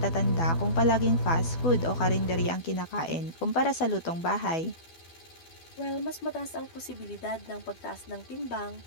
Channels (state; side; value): late; right; 12 ms